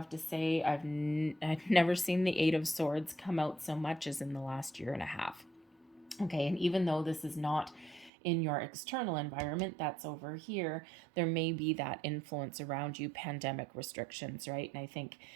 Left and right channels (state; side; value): drops out; left; at 8.1 s